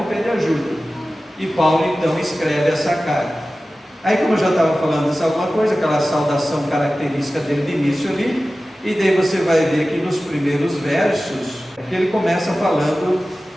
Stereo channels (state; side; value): normal; both; correlation 0.96